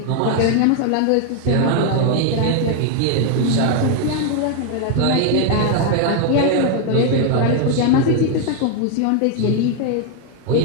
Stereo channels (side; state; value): both; different; correlation 0.01